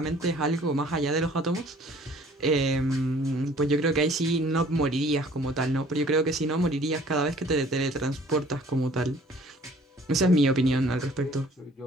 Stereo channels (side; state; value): both; normal; correlation 0.54